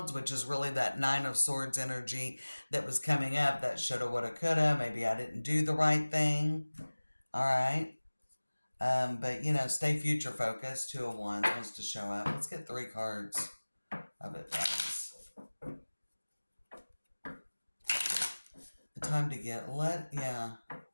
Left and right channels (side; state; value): both; inverted; correlation -1.00